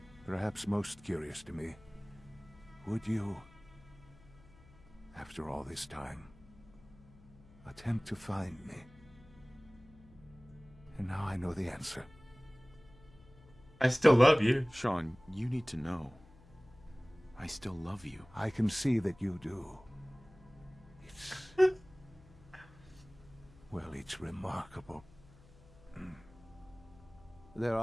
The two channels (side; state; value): left; noise; hum, 24 dB below the sound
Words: Perhaps most curious to me, would you, after all this time, attempt to find me? And now I know the answer. I still love you. Sean, you need to know. I still love you. I can see that you do. It's... well, it's remarkable. There